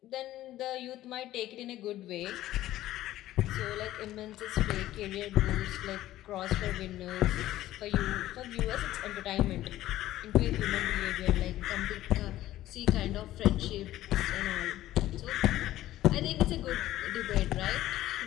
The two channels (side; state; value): right; quieter; 14.6 dB